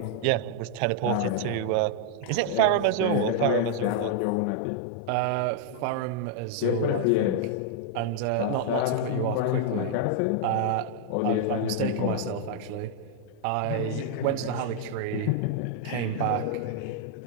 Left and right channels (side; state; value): both; different; correlation -0.01